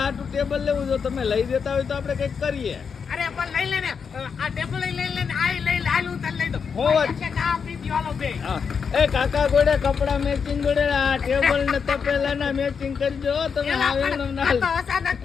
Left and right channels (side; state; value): right; quieter; 6.2 dB